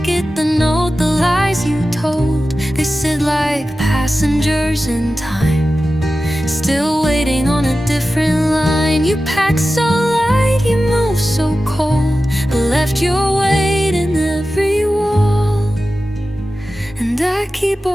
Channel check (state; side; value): normal; both; correlation 0.94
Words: the note, the lies you told. They sit like passengers in time, still waiting on a different line. You pack so light, you move so cold, but left your weight in every wall. And I keep